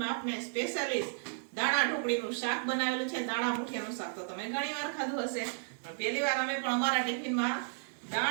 આપણે સ્પેશિયલિસ્ટ દાણા ઢોકળીનું શાક બનાવેલું છે. દાણા મુઠિયાનું શાક તો તમે ઘણી વાર ખાધું હશે, પણ પહેલી વાર અમે પણ અમારા ટિફિનમાં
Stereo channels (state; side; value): silent; left; digital silence